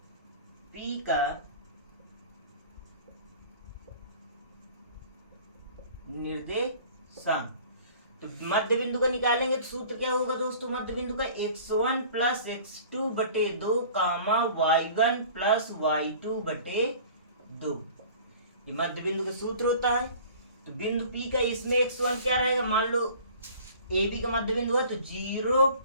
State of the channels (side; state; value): both; inverted; correlation -0.47